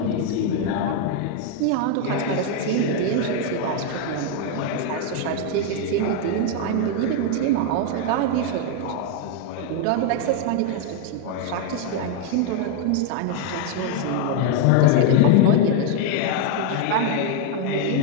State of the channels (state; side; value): different; both; correlation 0.00